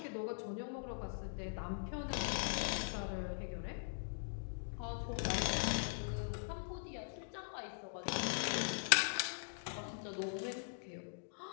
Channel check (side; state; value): right; silent; digital silence